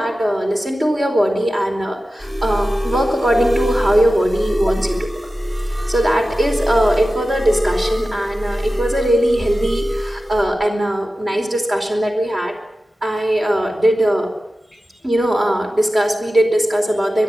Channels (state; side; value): normal; both; correlation 0.94